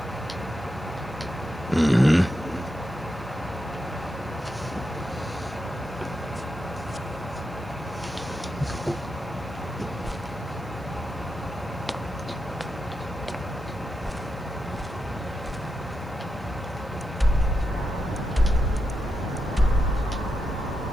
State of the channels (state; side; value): noise; left; hiss, 28 dB below the sound